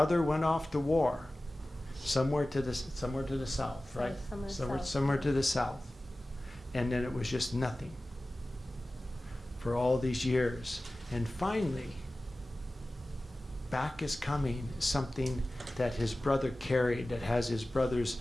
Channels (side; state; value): both; normal; correlation 0.96